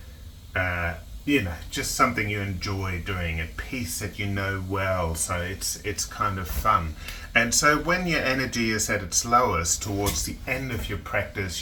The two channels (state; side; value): identical; both; correlation 1.00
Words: just something you enjoy doing, a piece that you know well, so it's kind of fun. And so when your energy is at its lowest towards the end of your